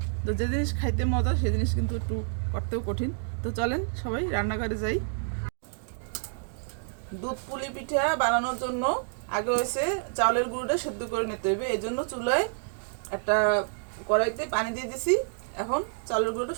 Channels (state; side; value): silent; left; digital silence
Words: তো যে জিনিস খাইতে মজা সেই জিনিস কিন্তু একটু করতেও কঠিন। তো চলেন সবাই রান্নাঘরে যাই। দুধ পুলি পিঠা বানানোর জন্য আগে হয়েছে চাউলের গুঁড়োটা সেদ্ধ করে নিতে হবে। এই জন্য চুলায় একটা কড়াইতে পানি দিয়ে দিছি। এখন চাউলের গুঁড়োটা